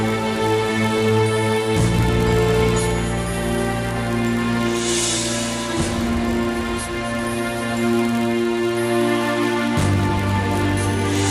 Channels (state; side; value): identical; both; correlation 1.00